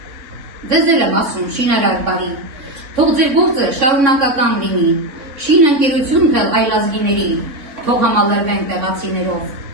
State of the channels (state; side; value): late; left; 3.7 ms